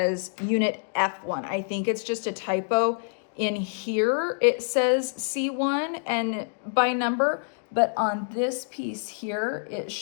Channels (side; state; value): right; silent; digital silence